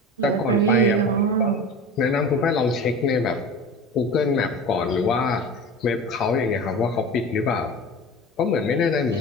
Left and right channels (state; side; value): normal; both; correlation 0.34